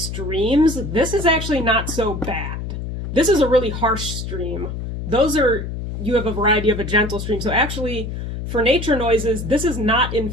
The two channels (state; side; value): noise; left; hum, 6 dB below the sound